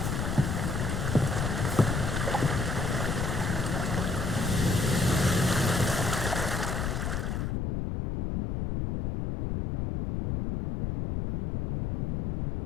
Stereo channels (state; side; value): noise; left; rumble, 1 dB below the sound